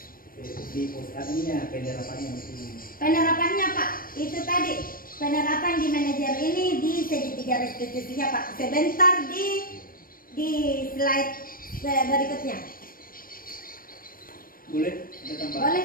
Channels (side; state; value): right; late; 0.41 ms